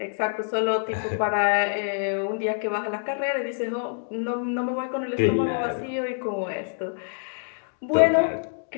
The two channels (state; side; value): silent; right; digital silence